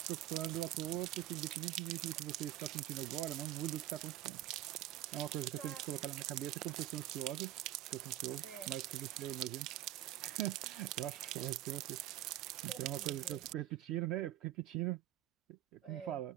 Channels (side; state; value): left; quieter; 14.0 dB